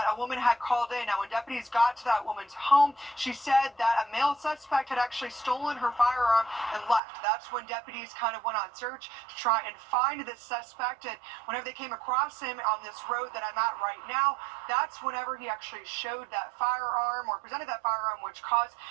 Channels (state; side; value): drops out; left; at 7.0 s